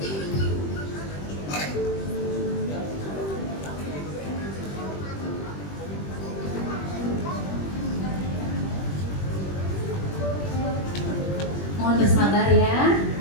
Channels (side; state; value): right; late; 21 ms